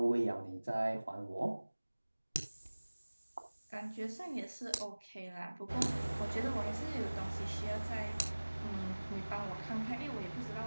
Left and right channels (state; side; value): inverted; both; correlation -1.00